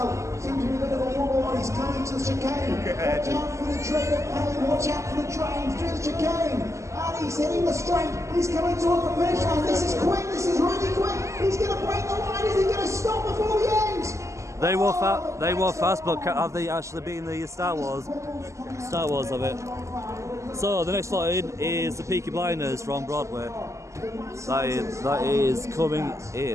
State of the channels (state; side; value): late; left; 0.14 ms